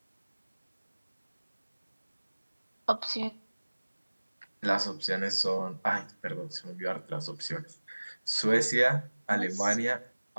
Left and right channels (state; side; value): inverted; both; correlation -1.00